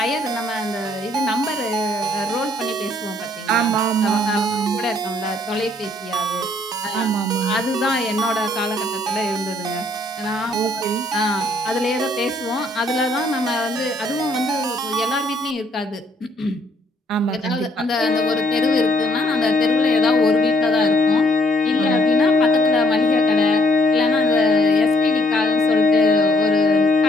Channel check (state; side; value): normal; both; correlation 0.67